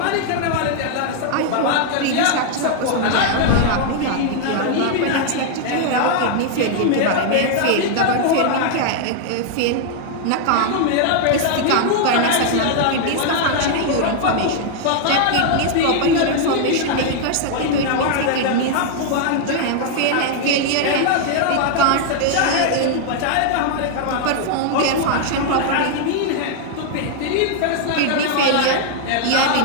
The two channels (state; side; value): different; both; correlation 0.00